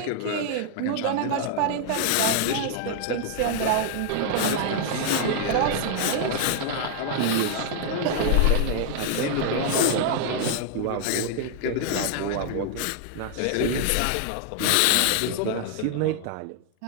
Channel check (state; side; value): different; both; correlation 0.00